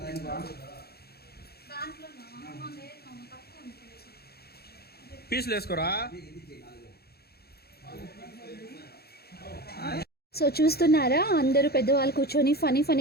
దాన్ని పీసులు వేసుకోరా. సో చూస్తున్నారా, అందరూ పెద్దవాళ్ళు కూర్చొని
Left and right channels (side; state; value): right; late; 0.46 ms